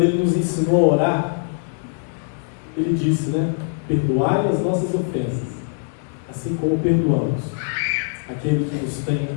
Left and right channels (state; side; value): silent; right; digital silence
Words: ele nos ensinou a orar, ele disse, né, perdoai as nossas ofensas, assim como perdoamos aquele que nos tem